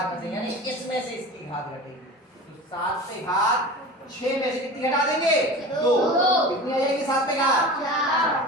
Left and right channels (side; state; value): both; normal; correlation 0.34